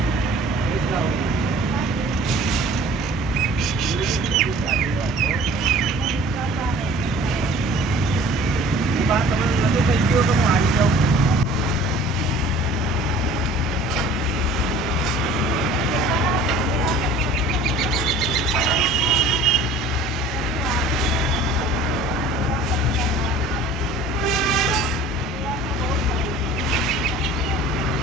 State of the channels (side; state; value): both; normal; correlation 0.47